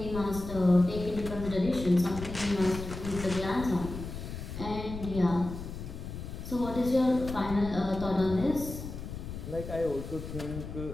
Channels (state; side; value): noise; left; rumble, 9 dB below the sound